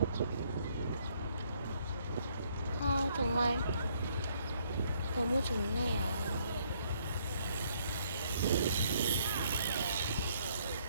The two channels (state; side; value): inverted; both; correlation -0.68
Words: 정말 너무 좋네요.